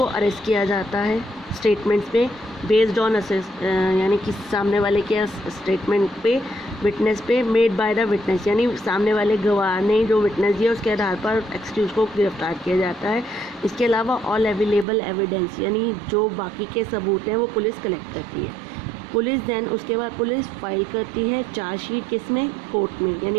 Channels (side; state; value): left; drops out; at 14.9 s